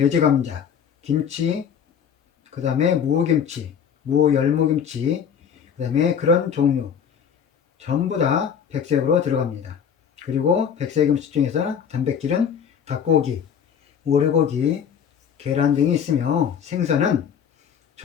김치, 그 다음에 무김치, 무열무김치, 그 다음에 그런 종류 전부 다 백색으로 들어갑니다. 그리고 백색 음식 중에서 단백질은 닭고기, 오리고기, 계란 등이 있으며 생선은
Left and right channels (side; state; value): right; quieter; 7.8 dB